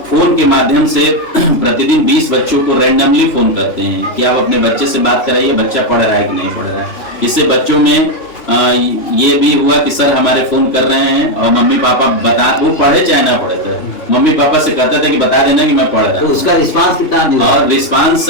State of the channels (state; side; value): late; right; 3.2 ms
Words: फोन के माध्यम से प्रतिदिन 20 बच्चों को रैंडमली फोन करते हैं कि आप अपने बच्चे से बात कराइए, बच्चा पढ़ रहा है कि नहीं पढ़ रहा है। इससे बच्चों में ये भी हुआ कि सर हमारे फोन कर रहे हैं और मम्मी पापा बता, वो पढ़े चाहे ना पढ़े थे, मम्मी पापा से कहते थे कि बता देना कि मैं पढ़ रहा हूं। तो उसका रिस्पांस कितना दिया? और रिस्पांस